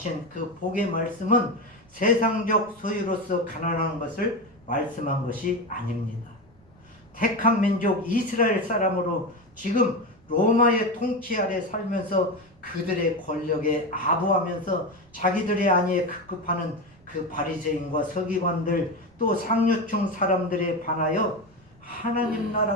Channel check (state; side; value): noise; right; rumble, 29 dB below the sound